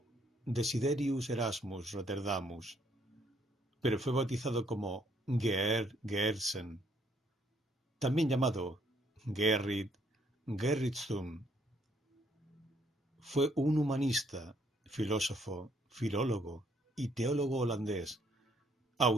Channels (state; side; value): normal; both; correlation 0.68